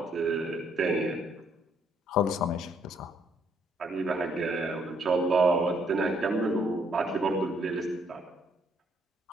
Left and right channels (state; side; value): normal; both; correlation 0.69